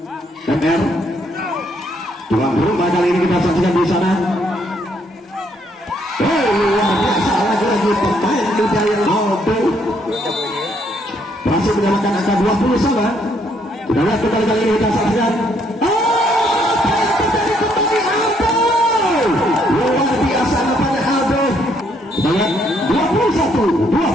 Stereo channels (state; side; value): normal; both; correlation 0.70